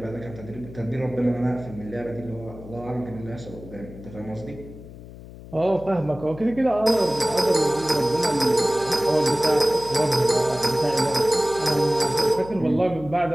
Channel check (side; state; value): left; noise; hum, 16 dB below the sound